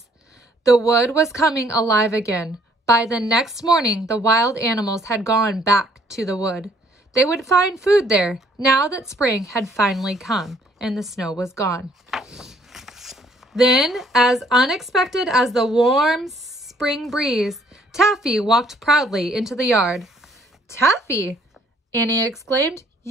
The wood was coming alive again. By the next morning, the wild animals had gone back to the wood. They would find food there, now that spring had finally come and the snow was gone. Then, as unexpected as the warm spring breeze, Taffy walked proudly into the yard. "Taffy!" Annie exclaimed,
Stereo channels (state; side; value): normal; both; correlation 0.63